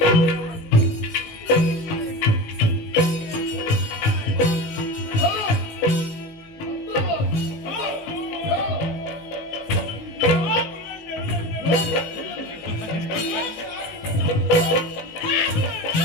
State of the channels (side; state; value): right; late; 18 ms